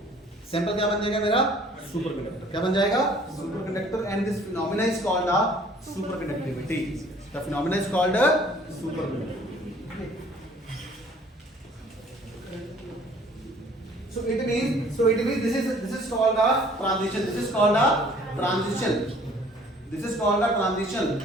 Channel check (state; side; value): normal; both; correlation 0.54